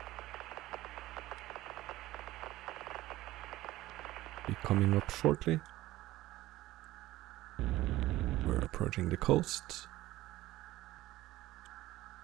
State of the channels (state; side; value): quieter; left; 16.5 dB